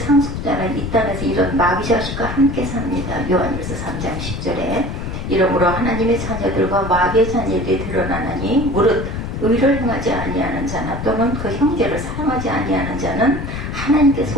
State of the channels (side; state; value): left; noise; rumble, 5 dB below the sound